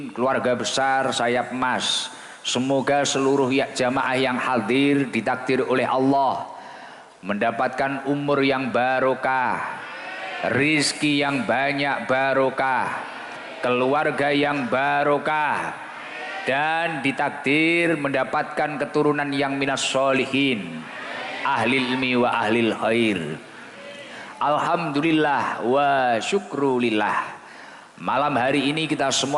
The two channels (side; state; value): both; identical; correlation 1.00